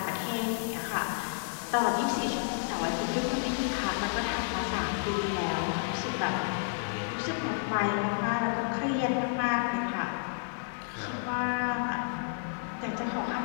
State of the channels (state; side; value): silent; right; digital silence